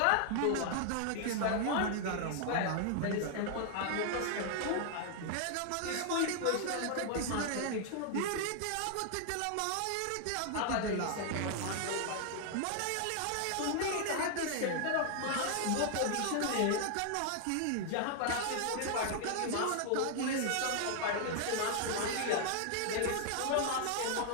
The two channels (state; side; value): different; both; correlation 0.00